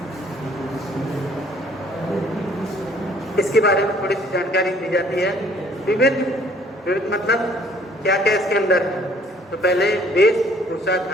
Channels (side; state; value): both; normal; correlation 0.59